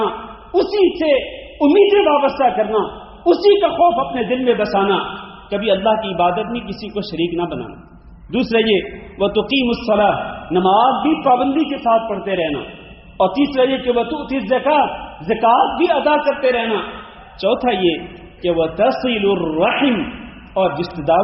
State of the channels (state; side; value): identical; both; correlation 1.00